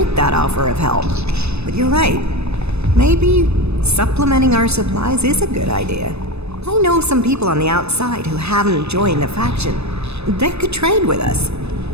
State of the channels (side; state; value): left; late; 0.80 ms